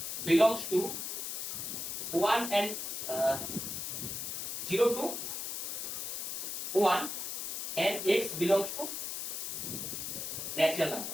belongs to 1 and 0 to 1, and X belongs to natural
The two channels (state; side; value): noise; left; hiss, 4 dB below the sound